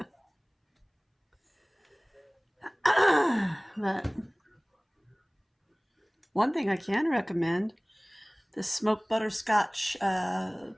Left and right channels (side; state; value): both; identical; correlation 1.00